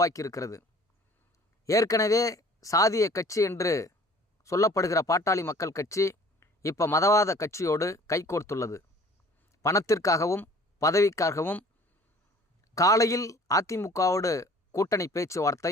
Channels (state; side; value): normal; both; correlation 0.50